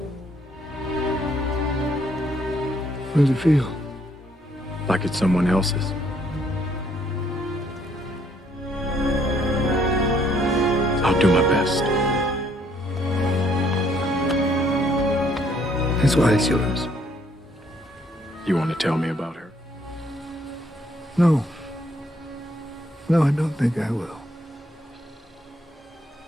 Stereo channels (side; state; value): both; normal; correlation 0.67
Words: How does it feel? Like it's someone else's. I'll do my best. That's why it's yours. You want to tell me about her? No. No, I don't think I will.